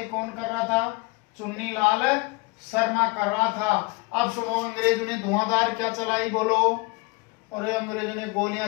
कौन कर रहा था? चुन्नीलाल शर्मा कर रहा था। अब सुनो, अंग्रेजों ने धुआंधार क्या चलाई बोलो? और अंग्रेजों ने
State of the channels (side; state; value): right; quieter; 27.3 dB